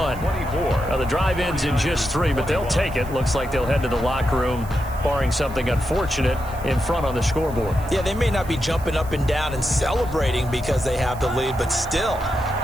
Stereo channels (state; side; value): noise; right; hiss, 20 dB below the sound